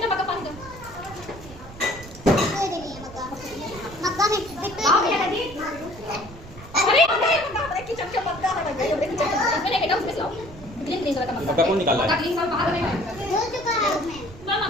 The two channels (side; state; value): right; noise; rumble, 17 dB below the sound